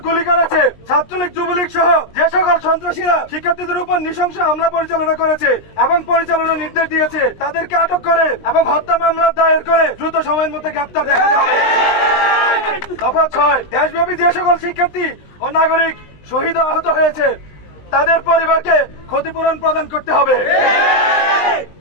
গুলি করেছে, ছাত্রলীগ যুবলীগ সহ যে সকল সন্ত্রাসীরা শিক্ষার্থীদের উপর নৃশংস হামলা পরিচালনা করেছে এবং পরিচালনার নির্দেশ দিয়েছে, তাদেরকে আটক করে এবং হত্যা মামলা দায়ের করে দ্রুত সময়ের মধ্যে গ্রেফতার দেখাতে হবে। দফা 6, দেশব্যাপী যে সকল শিক্ষার্থী ও নাগরিক শহীদ আহত হয়েছে তাদের পরিবারকে ক্ষতিপূরণ প্রদান করতে হবে।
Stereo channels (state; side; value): late; right; 20 ms